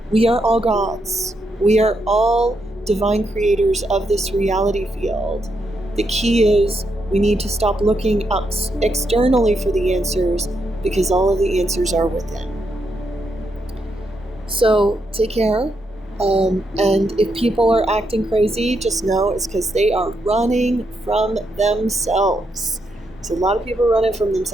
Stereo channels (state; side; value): normal; both; correlation 0.80